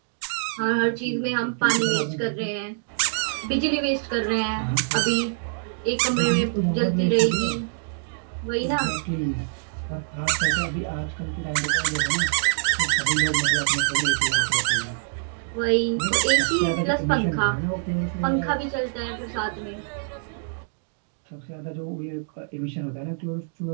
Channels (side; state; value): left; silent; digital silence